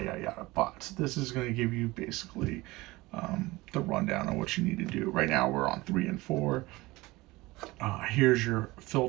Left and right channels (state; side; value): quieter; left; 20.7 dB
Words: yada yada. But this is going to give you basically the rundown on what you need to do. Right now we're on 3 and 4. Here's your